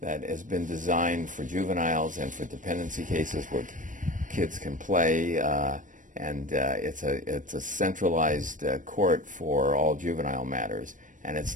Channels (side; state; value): left; late; 0.38 ms